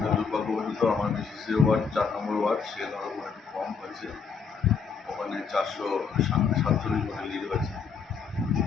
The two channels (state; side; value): quieter; right; 5.8 dB